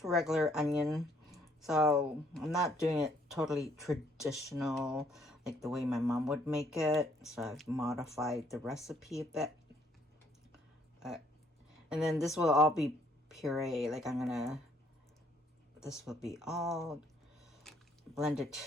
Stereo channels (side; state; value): both; normal; correlation 0.65